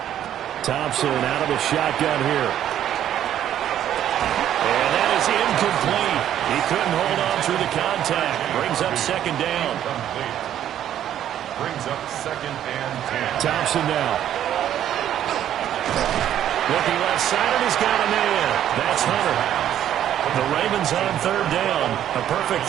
Thompson out of the shotgun here. And that is incomplete. He couldn't hold on through the contact. Brings up 2nd down. Brings up 2nd and 10. Thompson now. Looking left side, and he's got a man. That's Hunter. The Ravens on 3rd down. A perfect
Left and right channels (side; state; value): left; quieter; 10.9 dB